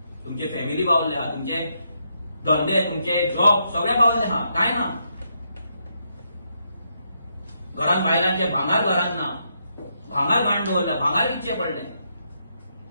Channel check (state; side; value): inverted; both; correlation -0.79